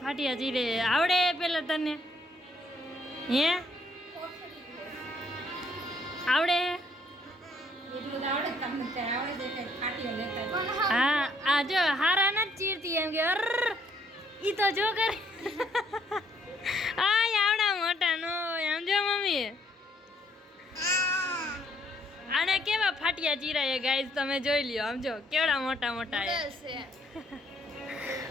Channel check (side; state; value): both; normal; correlation 0.67